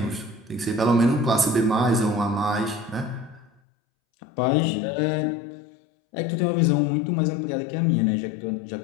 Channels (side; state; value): right; drops out; at 3.5 s